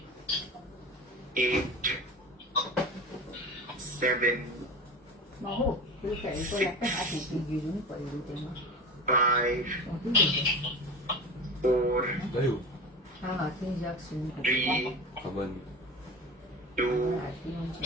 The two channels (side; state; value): both; normal; correlation 0.31